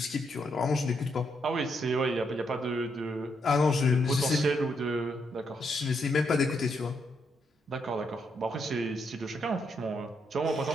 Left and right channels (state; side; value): normal; both; correlation 0.78